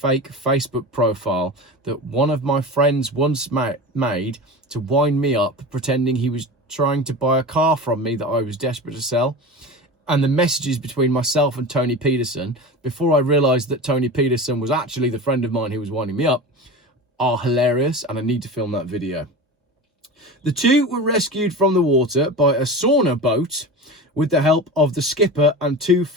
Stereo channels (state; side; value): normal; both; correlation 0.30